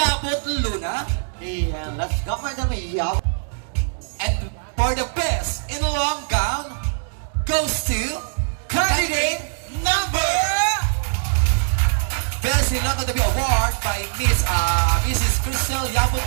Luna. Yeah, let's go, Madam Yab. And for the Best in Long Gown goes to candidate number Best in Long Gown to be award by Mrs. Cristel Yabut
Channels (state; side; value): silent; left; digital silence